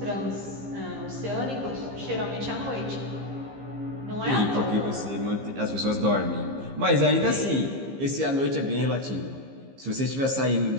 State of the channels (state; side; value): late; left; 15 ms